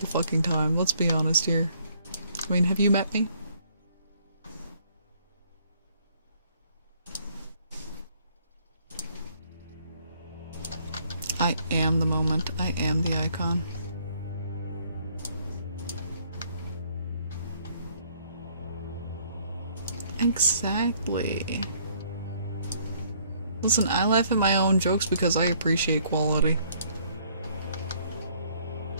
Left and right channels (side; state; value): both; inverted; correlation -0.64